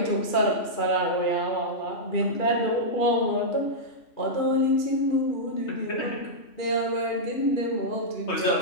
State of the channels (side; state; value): right; late; 2.4 ms